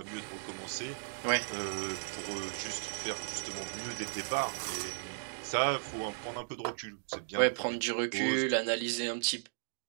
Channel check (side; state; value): left; silent; digital silence